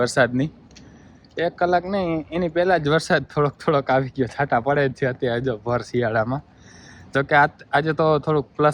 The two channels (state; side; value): identical; both; correlation 1.00